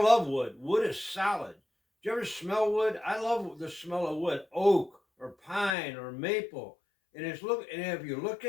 love wood. Wood is solid. Do you ever smell wood? I love the smell of wood. Oak or pine or maple. And if you look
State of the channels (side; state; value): right; drops out; at 5.8 s